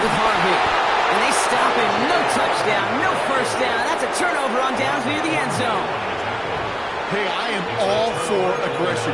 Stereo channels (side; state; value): both; identical; correlation 1.00